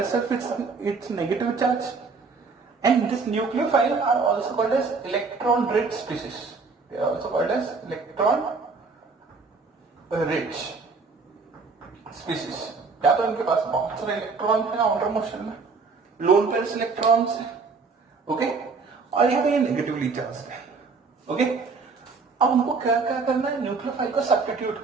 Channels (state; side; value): quieter; left; 4.5 dB